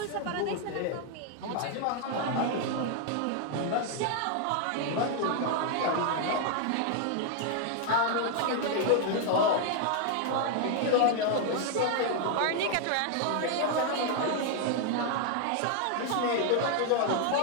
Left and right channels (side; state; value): both; different; correlation 0.00